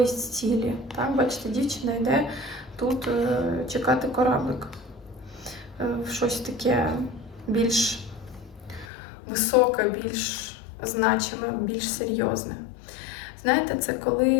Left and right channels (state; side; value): drops out; right; at 8.8 s